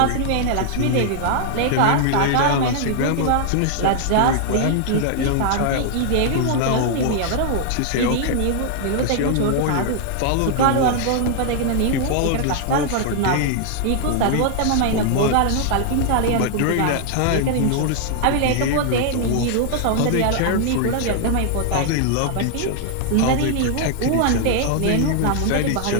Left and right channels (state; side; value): different; both; correlation 0.00